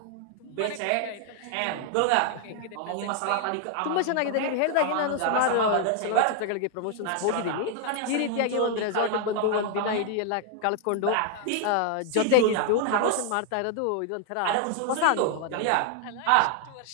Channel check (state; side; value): different; both; correlation 0.00